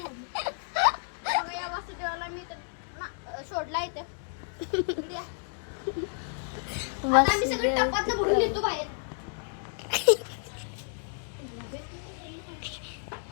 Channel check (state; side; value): silent; right; digital silence